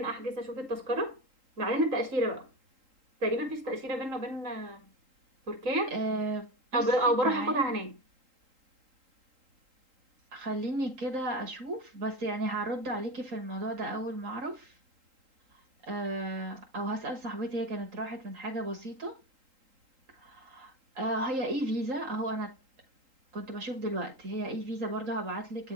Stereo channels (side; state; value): left; late; 3.8 ms